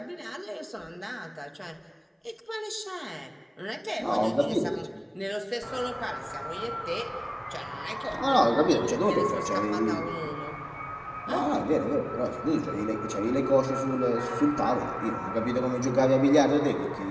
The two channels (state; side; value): identical; both; correlation 1.00